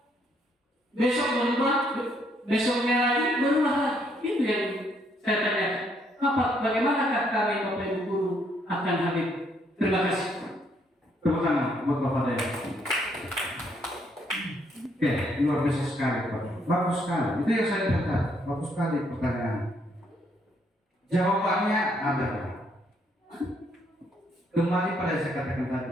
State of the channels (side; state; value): both; normal; correlation 0.71